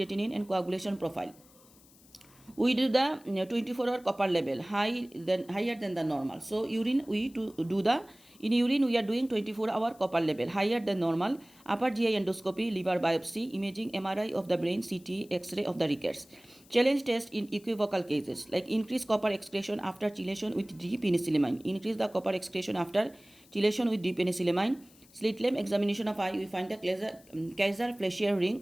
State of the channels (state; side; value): noise; left; hiss, 26 dB below the sound